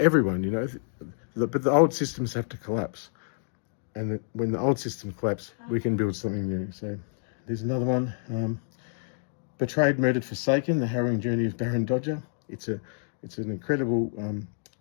but the old systems have to collapse. And when the old system collapses, we can build something new. So there's another one. Betrayed, Murdered, Forsaken, The Harrowing Journey of Barran. It's an incredible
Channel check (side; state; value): right; silent; digital silence